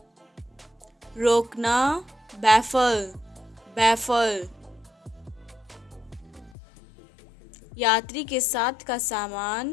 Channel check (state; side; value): drops out; right; at 6.6 s